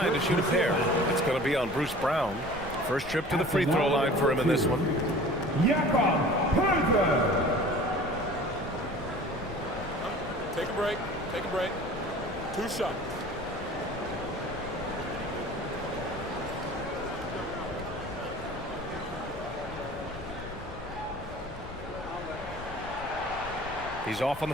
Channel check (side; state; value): left; noise; rumble, 15 dB below the sound